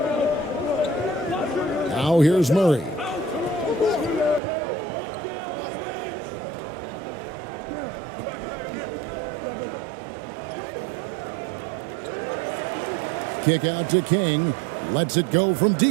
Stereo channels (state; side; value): drops out; left; at 4.4 s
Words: Now here's Murray. Kick out to King. Lets it go from